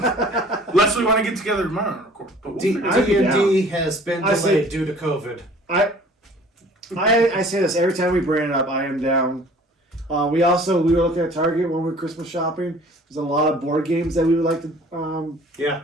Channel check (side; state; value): both; normal; correlation 0.50